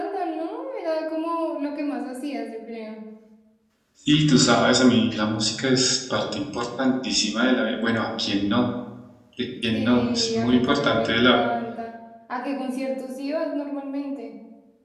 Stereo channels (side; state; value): both; identical; correlation 1.00